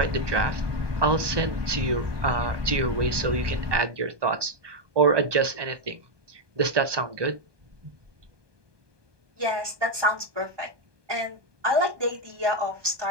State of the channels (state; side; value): late; left; 1.2 ms